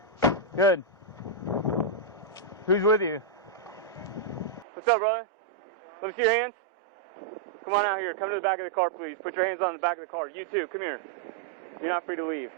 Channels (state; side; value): drops out; left; at 4.7 s